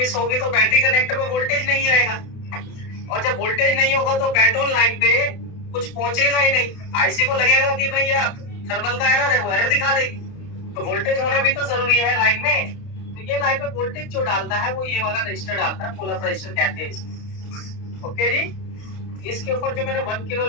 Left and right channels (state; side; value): late; right; 31 ms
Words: होगी तो बैटरी कनेक्टर में वोल्टेज नहीं आएगा, और जब वोल्टेज नहीं होगा तो बैट ऑन लाइन पे कुछ पहुंचेगा ही नहीं। आईसी को लगेगा कि भैया थर्मल का एरर है, वो एरर दिखा देगी। तो वोल्टेज होना भी तो जरूरी है लाइन में। तो ये लाइन में वोल्टेज जो डालता है वो ये वाला रजिस्टर डालता है, पुल अप रजिस्टर कहते हैं इसको। ओके जी, इसके ऊपर जो मैंने 1 किलो